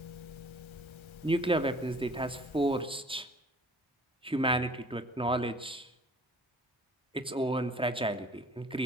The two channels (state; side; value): normal; both; correlation 0.51